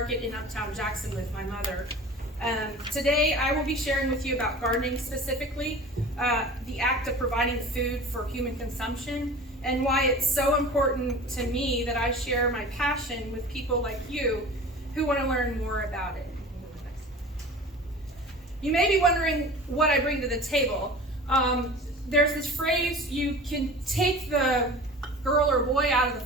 in Uptown Jackson with my mother. Today, I will be sharing with you about gardening specifically, the act of providing food for human consumption, and why it's so important to me that I share my passion with people like you who want to learn more about it. You may be wondering what I bring to the table. There's this phrase, you can take the girl or boy out of the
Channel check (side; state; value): both; normal; correlation 0.39